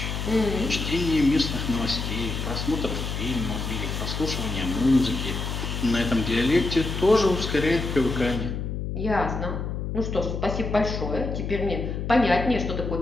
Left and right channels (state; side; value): noise; left; hum, 4 dB below the sound